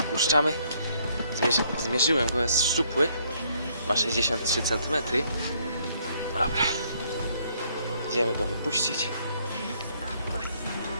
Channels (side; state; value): both; inverted; correlation -0.67